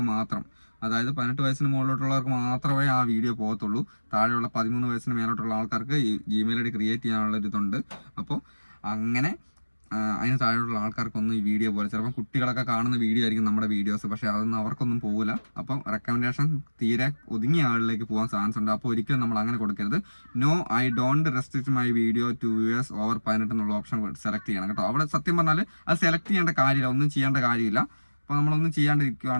മാത്രം, അതായത് 18 വയസ്സിന് മുകളിലോട്ടുള്ളവർക്ക് മാത്രമേ ആ വീഡിയോ പോകത്തുള്ളൂ. താഴെയുള്ള 13 വയസ്സിന് മേലോട്ടുള്ള ആൾക്കാർക്ക് ഈ ജിമെയിൽ ഐ ഡി ക്രിയേറ്റ് ചെയ്യാനുള്ളൊരിതുണ്ട്. അപ്പോൾ അങ്ങനെ അതിന് താഴെയുള്ള ആൾക്കാർക്കൊന്നും ഈ വീഡിയോ പോലെ ചിലപ്പോൾ കുട്ടികളൊക്കെ കാണുന്ന വീഡിയോ ആയിരിക്കും നമ്മുടെ വീഡിയോസ്, പക്ഷേ അതൊന്നും അവർക്കൊന്നും പോകില്ല. അപ്പം റെക്കമെൻഡേഷൻ തീരെ ഒതുങ്ങിയ ആളിലേക്ക് പോകാൻ ചാൻസ് ഉണ്ട്. അപ്പോൾ ഒരിക്കലും നമ്മൾ അങ്ങനെ കൊടുക്കരുത്. No, I don't restrict my video to viewers over 18 എന്നുള്ള ഓപ്ഷൻ സെലക്ട് ചെയ്യണം കേട്ടോ. അവിടെ സത്യം പറഞ്ഞാൽ അത് സെലക്ട് ചെയ്യേണ്ട കാര്യമില്ല, ഒന്നും ചെയ്യേണ്ട കാര്യമില്ല. അപ്പോൾ നമ്മളൊന്നും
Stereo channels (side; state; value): both; inverted; correlation -1.00